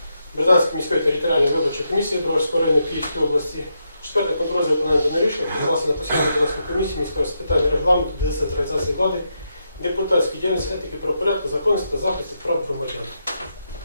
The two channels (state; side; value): inverted; both; correlation -0.83